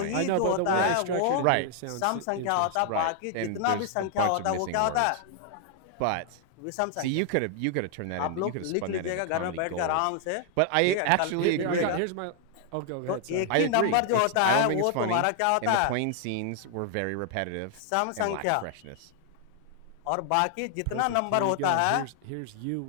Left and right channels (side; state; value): both; different; correlation 0.00